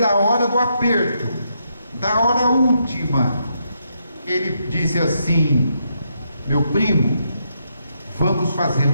hora do aperto, da hora última. Ele disse assim: meu primo, vamos fazer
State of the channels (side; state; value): both; inverted; correlation -0.79